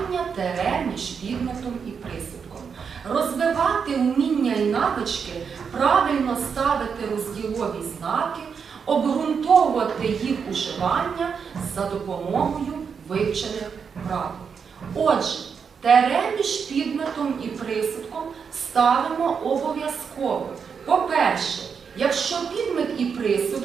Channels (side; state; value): left; quieter; 6.3 dB